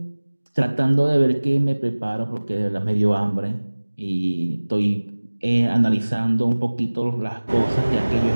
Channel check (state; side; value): inverted; both; correlation -1.00